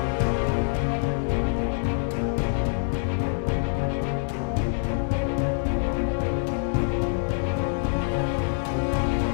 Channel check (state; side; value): silent; right; digital silence